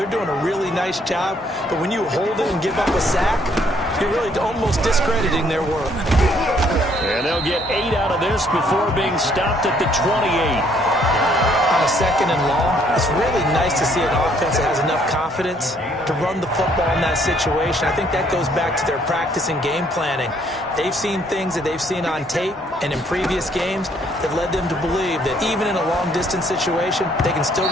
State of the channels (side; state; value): both; normal; correlation 0.65